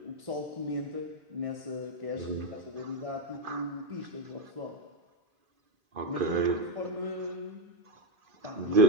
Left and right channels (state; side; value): late; left; 2.5 ms